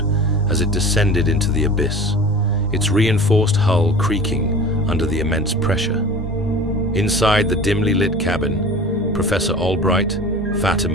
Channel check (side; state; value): both; normal; correlation 0.38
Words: as it descended into the abyss, its reinforced hull creaking under the immense pressure. Inside the dimly lit cabin, Professor Albright,